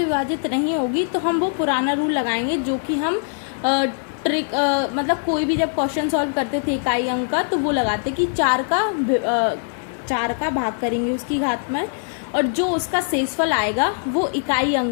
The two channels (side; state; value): right; silent; digital silence